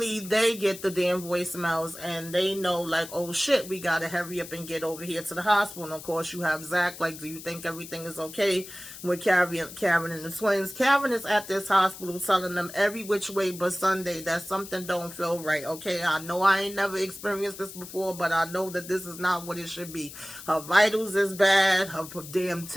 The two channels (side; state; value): left; noise; hiss, 14 dB below the sound